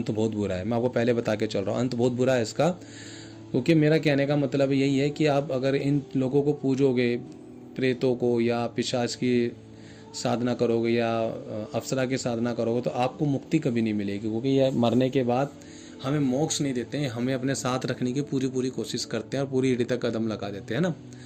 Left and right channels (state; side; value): identical; both; correlation 1.00